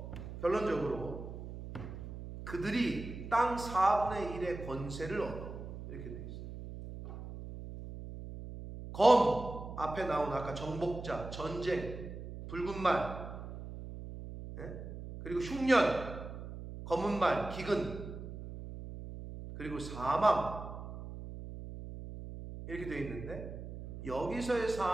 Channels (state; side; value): noise; right; hum, 10 dB below the sound